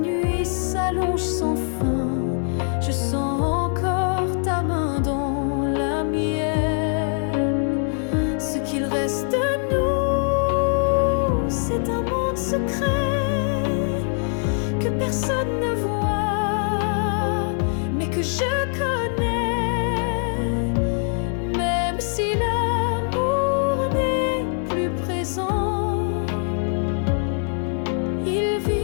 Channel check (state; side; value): silent; right; 55 dB below the other